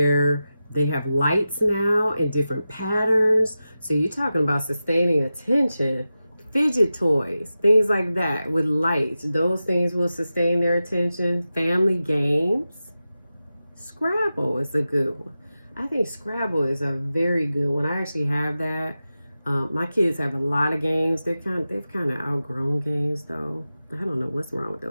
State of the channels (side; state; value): both; inverted; correlation -0.93